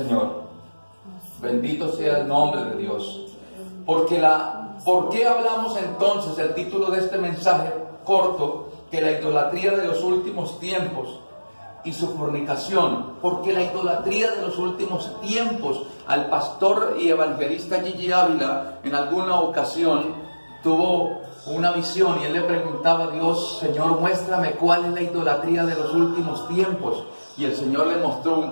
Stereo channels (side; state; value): both; inverted; correlation -1.00